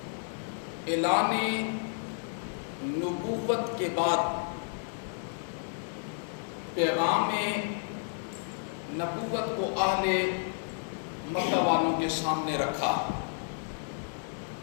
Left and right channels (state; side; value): silent; right; digital silence